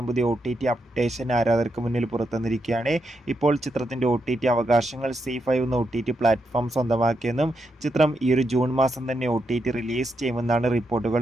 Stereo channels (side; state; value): both; normal; correlation 0.82